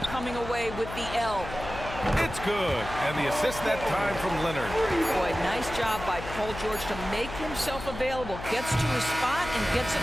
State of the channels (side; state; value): left; noise; hum, 10 dB below the sound